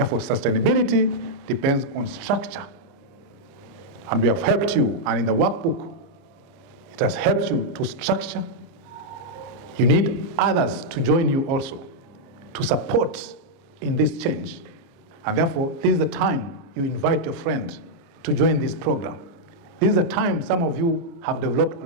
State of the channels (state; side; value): late; left; 29 ms